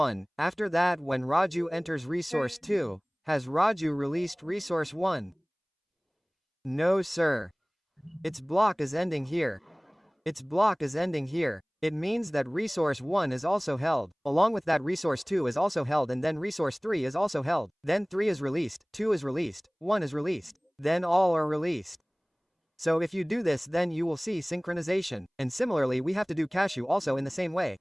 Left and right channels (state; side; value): identical; both; correlation 1.00